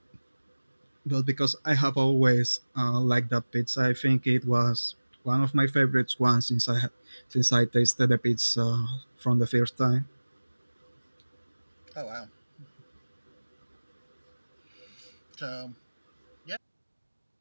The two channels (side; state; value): both; inverted; correlation -1.00